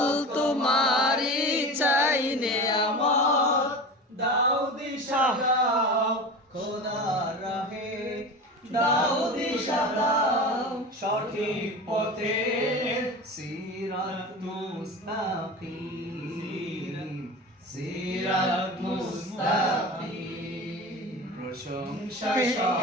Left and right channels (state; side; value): normal; both; correlation 0.31